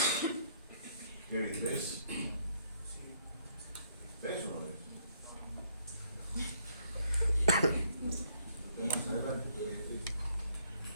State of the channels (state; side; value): inverted; both; correlation -0.68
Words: ¿Qué ves? ¿Ves o no ves? Más adelante,